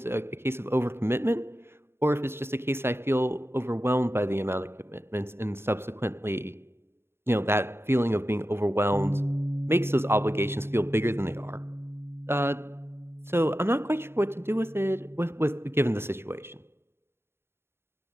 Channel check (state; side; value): late; left; 0.12 ms